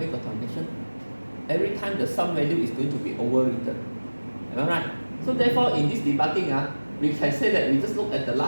got connection? Every time the sum value is going to be overwritten. Am I right? So therefore, in this debugging, we can say that we just look at the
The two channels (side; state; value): both; inverted; correlation -1.00